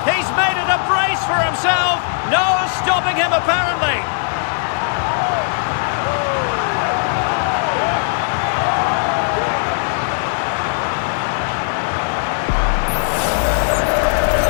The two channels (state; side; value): silent; right; digital silence